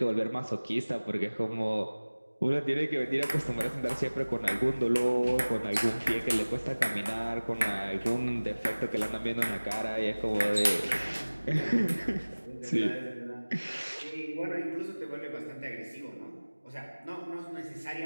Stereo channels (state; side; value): inverted; both; correlation -1.00